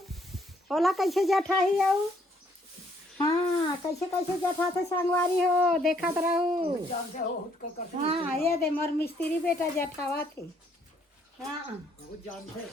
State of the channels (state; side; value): normal; both; correlation 0.67